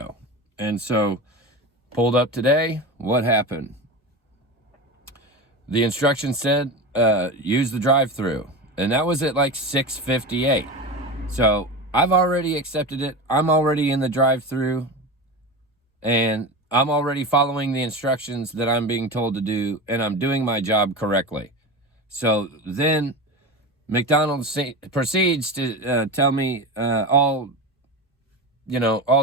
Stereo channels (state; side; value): normal; both; correlation 0.25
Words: And so, pulled up today, what happened? The instructions said, use the drive-through. And that was at like 6:58. So I've already accepted it. I'm already in the drive-through, and I'm already following the instructions that I'm being told to do, and I'm doing my job correctly. So then McDonald's proceeds to tell me all